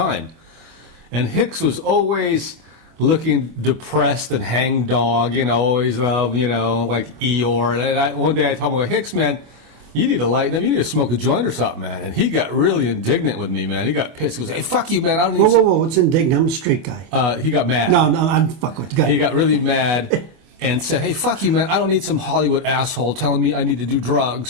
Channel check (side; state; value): left; late; 24 ms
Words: And Hicks was always looking depressed and hangdog, always, like Eeyore. And one day I told him, Hicks, man, you need to lighten up. You need to smoke a joint or something, man. And he got really indignant with me, man. He got pissed. He goes, hey, fuck you, man. I don't need Whoa. What's indignant? I'm a straight guy. He got mad. No, I'm fuck with you. He got really mad. And said, hey, fuck you, man. I don't need some Hollywood asshole telling me I need to do